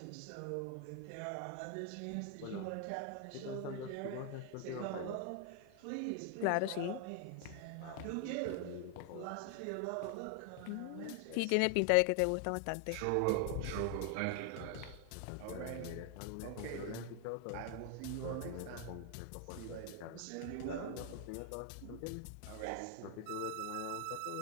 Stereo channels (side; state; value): both; different; correlation 0.00